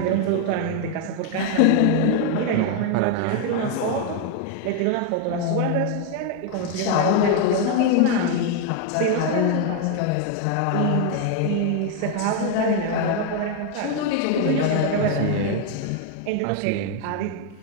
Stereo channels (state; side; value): different; both; correlation 0.01